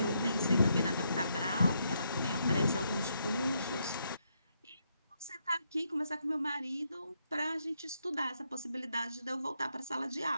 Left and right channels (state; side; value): inverted; both; correlation -0.78